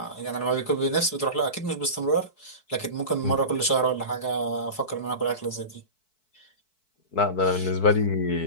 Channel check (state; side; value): late; right; 4.6 ms